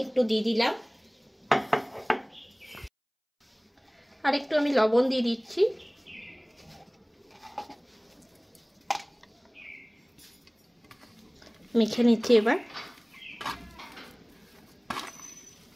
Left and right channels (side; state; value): both; identical; correlation 1.00